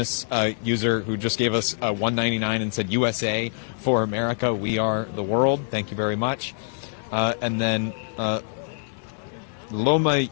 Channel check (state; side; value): silent; right; 58 dB below the other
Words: user who just gave us $1.99 and said, "USA for America, we are the world." Thank you very much. And then Loma